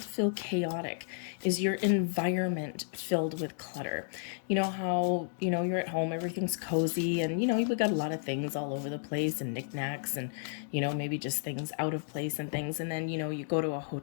feel chaotic? Is your environment filled with clutter? You know how, you're at home, everything's cozy, and, we got a lot of things all over the place, and knickknacks, and, maybe just things out of place and things. And then, you go to a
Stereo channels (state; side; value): silent; right; digital silence